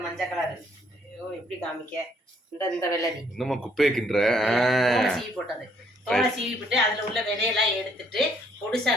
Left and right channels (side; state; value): both; normal; correlation 0.67